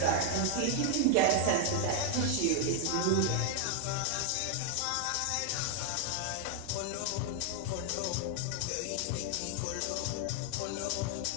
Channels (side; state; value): both; different; correlation 0.00